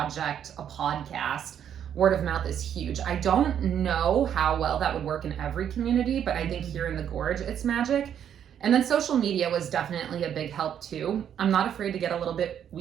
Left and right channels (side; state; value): left; quieter; 9.2 dB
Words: a podcast. Word of mouth is huge. I don't know how well that would work in every community, but I think here in the Gorge, it's magic. And then social media was definitely a big help too. I'm not afraid to get a little bit